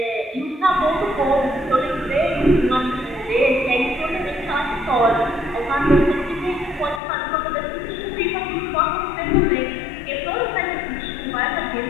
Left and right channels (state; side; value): drops out; right; at 7.0 s